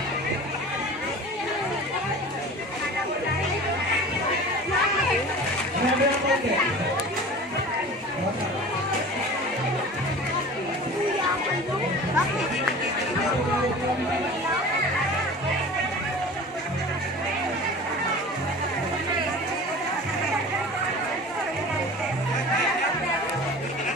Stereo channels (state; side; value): normal; both; correlation 0.38